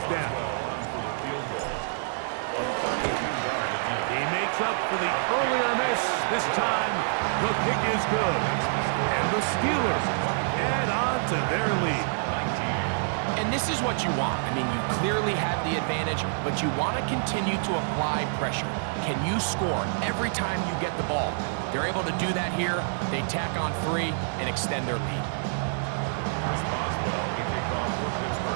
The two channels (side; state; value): left; silent; digital silence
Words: down. He makes up for the earlier miss. This time, the kick is good. And the Steelers add on to their lead. And this is what you want. I mean, you clearly have the advantage, but you want to continue to apply pressure. Can you score every time you get the ball? They're able to do that here. They tack on 3 and extend their lead.